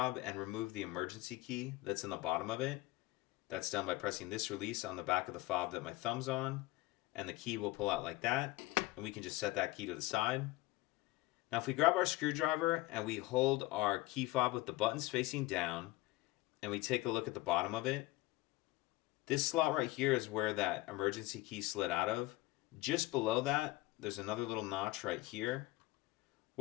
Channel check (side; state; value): right; quieter; 19.4 dB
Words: and remove the emergency key that's in the bottom of it. That's done by pressing this release on the back of the fob that my thumb's on, and the key will pull out like that, and we can just set that key to the side. Now if we grab our screwdriver and we hold our key fob with the buttons facing down, and we take a look at the bottom of it, this slot right here is where that emergency key slid out of. Just below that, there's another little notch right here.